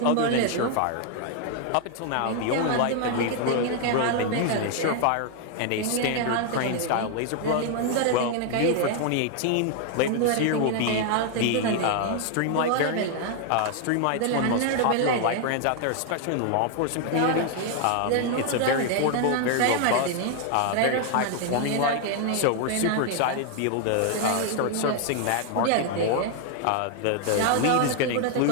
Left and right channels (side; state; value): both; different; correlation 0.00